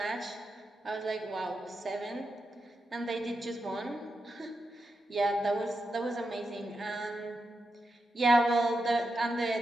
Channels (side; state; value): both; normal; correlation 0.87